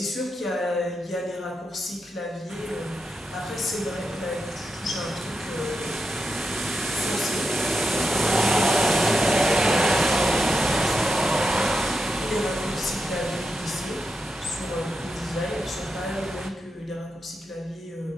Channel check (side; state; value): both; normal; correlation 0.86